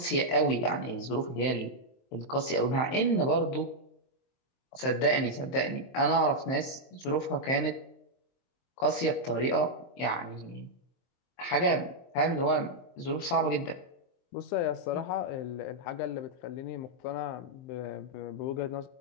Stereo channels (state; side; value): late; right; 23 ms